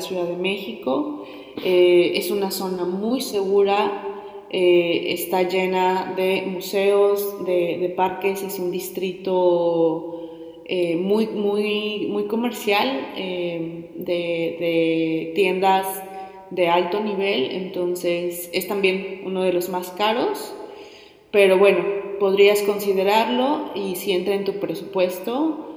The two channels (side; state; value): both; identical; correlation 1.00